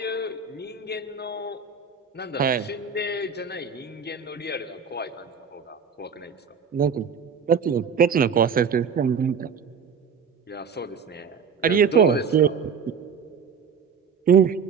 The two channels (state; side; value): quieter; left; 6.2 dB